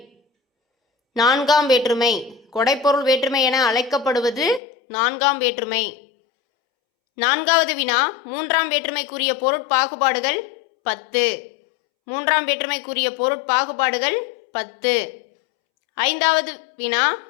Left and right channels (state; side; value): drops out; right; at 4.6 s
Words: நான்காம் வேற்றுமை. கொடைப்பொருள் வேற்றுமை என அழைக்கப்படுவது நான்காம் வேற்றுமை. நான்காவது வினா, மூன்றாம் வேற்றுமைக்குரிய பொருட்பாகுபாடுகள் 10. மூன்றாம் வேற்றுமைக்குரிய பொருட்பாகுபாடுகள் 10. ஐந்தாவது வினா,